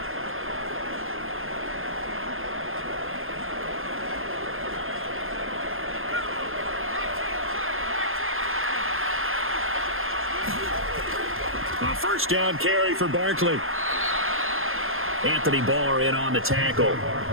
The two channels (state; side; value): late; left; 0.60 ms